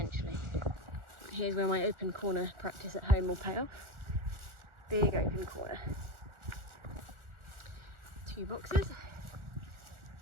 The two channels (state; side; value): late; left; 1.4 ms